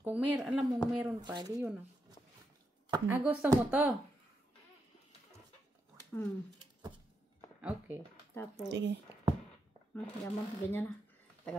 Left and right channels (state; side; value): normal; both; correlation 0.83